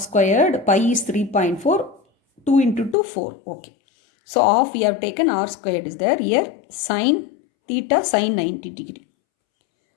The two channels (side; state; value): right; drops out; at 3.0 s